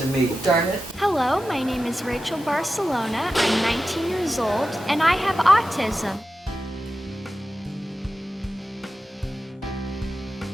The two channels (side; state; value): both; normal; correlation 0.92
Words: to me. Darn it. Hello, my name is Rachel Barcellona. I'm 19 years old and I have autism.